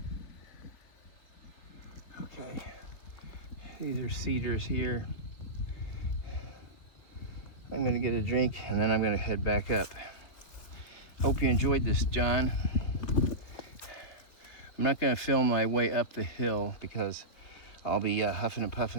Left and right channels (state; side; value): late; right; 3.6 ms